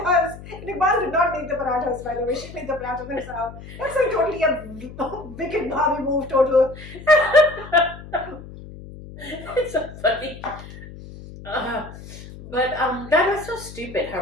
And Iqbal did not make the parathas, by the way. She made the parathas herself. That's like totally a wicked Bobby move, total. It's so funny. But that was so stupid,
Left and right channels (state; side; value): noise; left; hum, 15 dB below the sound